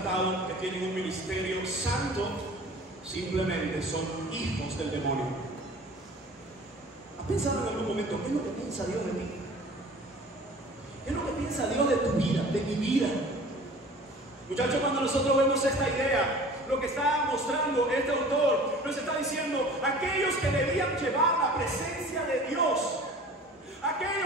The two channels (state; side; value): normal; both; correlation 0.44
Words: que tienen un ministerio santo, simplemente son hijos del demonio. ¿Has pensado en algún momento qué es lo que piensa Dios de mí? ¿Qué es lo que piensa Dios de tu vida, de mi vida? Muchachos, cuando nosotros vemos esta idea, lo que está mostrando este autor, nos está diciendo, aquellos que debían llevar la presencia de Dios,